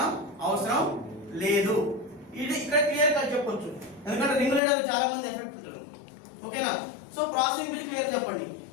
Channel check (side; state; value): right; drops out; at 4.6 s